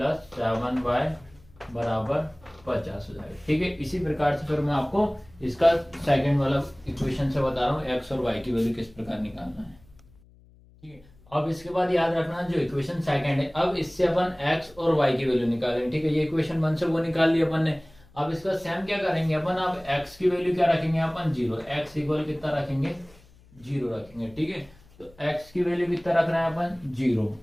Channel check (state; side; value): noise; left; hum, 27 dB below the sound